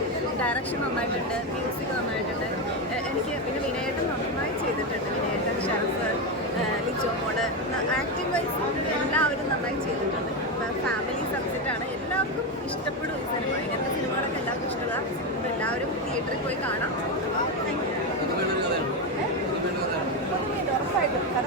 ഡയറക്ഷൻ നന്നായിട്ടുണ്ട്, മ്യൂസിക് നന്നായിട്ടുണ്ട്. എനിക്ക് പിന്നെ വിനയേട്ടൻ നന്നായി ചെയ്തിട്ടുണ്ട്. വിനയേട്ടൻ, ഷറഫ്, ലിജോ മോള്, ആക്ടിംഗ് വൈസ് എല്ലാവരും നന്നായി ചെയ്തിട്ടുണ്ട്. ഫാമിലി സബ്ജക്റ്റാണ്, എല്ലാവർക്കും ഇഷ്ടപ്പെടും ഈ സിനിമ. ഇങ്ങനത്തെ സിനിമകളൊക്കെ എല്ലാവർക്കും ഇഷ്ടമാണ്. അപ്പോൾ എല്ലാവരും തിയേറ്ററിൽ പോയി കാണാം. ഉറപ്പായിട്ടും,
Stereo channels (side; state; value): both; normal; correlation 0.11